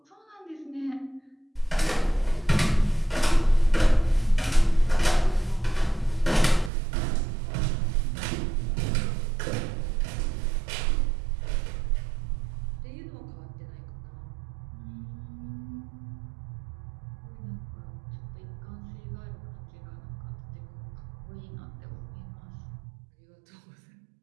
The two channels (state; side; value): drops out; left; at 6.7 s